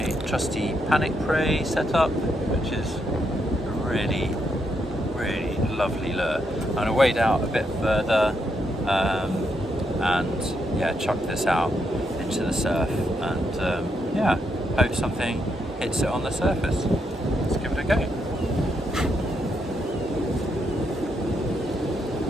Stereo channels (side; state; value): both; normal; correlation 0.79